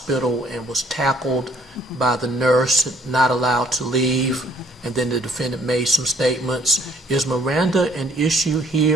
and was tackled by the nurse, not allowed to leave, and then the defendant made some statements. Is Miranda an issue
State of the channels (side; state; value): both; normal; correlation 0.62